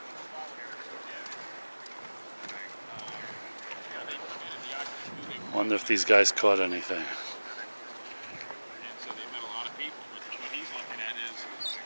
Wonder if these guys caught anything. So they met a lot of people, but what he's looking at is,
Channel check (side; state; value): both; inverted; correlation -1.00